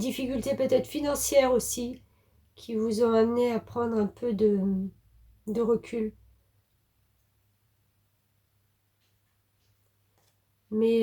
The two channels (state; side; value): identical; both; correlation 1.00